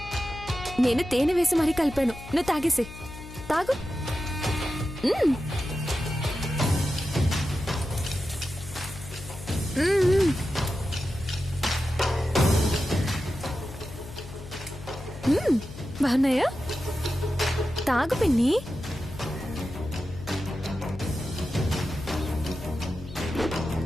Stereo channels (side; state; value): left; noise; hum, 14 dB below the sound